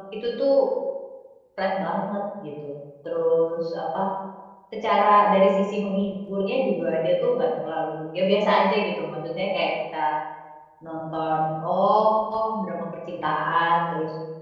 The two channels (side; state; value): both; identical; correlation 1.00